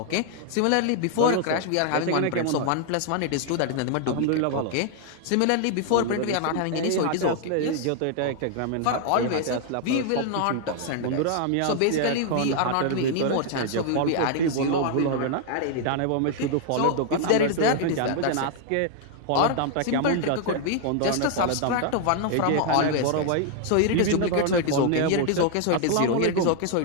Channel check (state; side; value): different; both; correlation 0.00